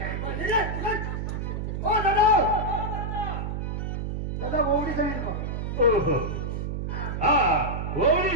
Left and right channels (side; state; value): right; noise; hum, 3 dB below the sound